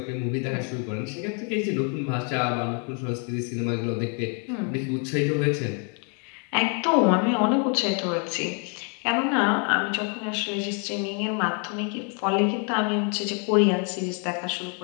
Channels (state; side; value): quieter; right; 38.8 dB